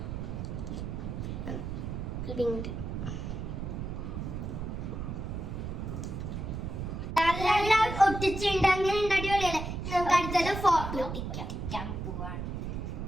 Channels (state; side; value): noise; right; rumble, 5 dB below the sound